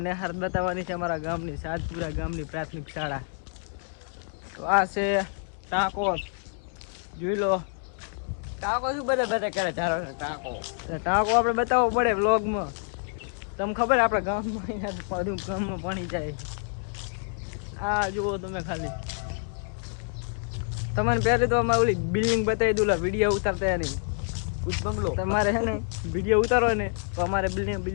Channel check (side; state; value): right; silent; 60 dB below the other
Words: નેહાર બતાવવાની છે અમારા ગામની, સાતપુરા ગામની પ્રાથમિક શાળા. તો આ છે ટાંકો, જોઈ લો. ટાંકો શું બધા કરે ટાંકો આપણે બતાવવો પડે વ્લોગમાં. તમને ખબર આપણા ગામમાં બધું ગામમાં પાણી જાય. આ જુઓ તમે ખાલી. તમને પહેલે તો અમારે ઓલી બિલ્ડિંગ બતાવી દઉં, વિડીયો ઉતારતા નહીં. બંગલો તમારે છે ને વિડીયો ઉતારો ને તો અમારે